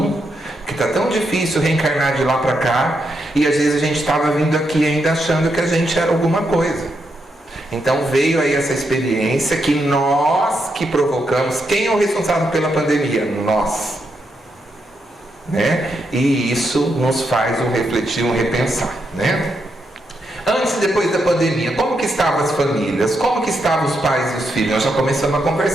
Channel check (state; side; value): normal; both; correlation 0.82